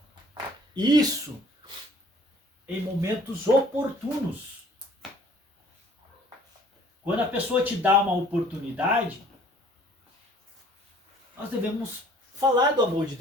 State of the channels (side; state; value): both; normal; correlation 0.54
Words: Isso em momentos oportunos. Quando a pessoa te dá uma oportunidade, nós devemos falar do amor de